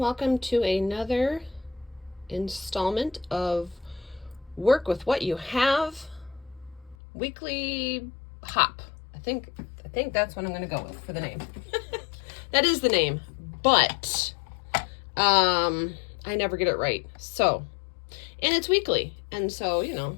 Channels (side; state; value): right; drops out; at 7.0 s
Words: to another installment of Work with What You Have weekly hop. I think that's what I'm going to go with for the name. That is the name, but I never get it right. So, and it's weekly, and so